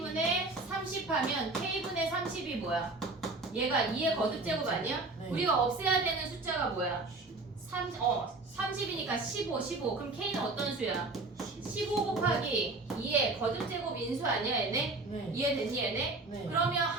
30 하면 K분의 30이 뭐야? 얘가 2의 거듭제곱 아니야? 네. 우리가 없애야 되는 숫자가 뭐야? 30이니까 15. 그럼 K는 어떤 수야? 15 곱하기 2의 거듭제곱 인수 아니야 얘네? 네. 이해됐니 얘네? 네. 그러면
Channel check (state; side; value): quieter; left; 3.3 dB